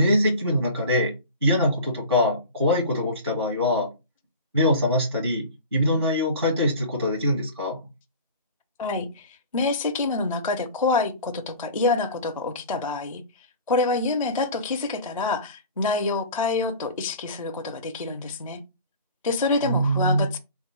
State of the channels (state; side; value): inverted; both; correlation -0.38